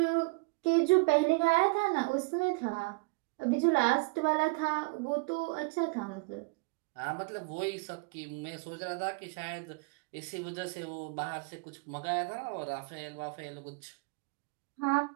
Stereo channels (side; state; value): left; quieter; 30.0 dB